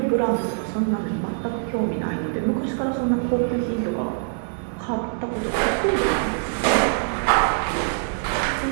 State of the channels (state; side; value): silent; left; digital silence